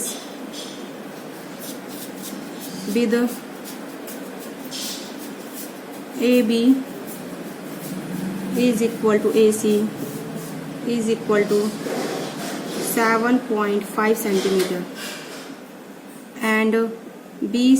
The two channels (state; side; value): identical; both; correlation 1.00